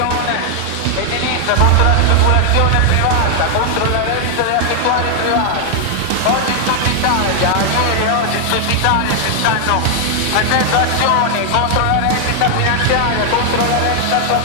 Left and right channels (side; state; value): both; different; correlation 0.00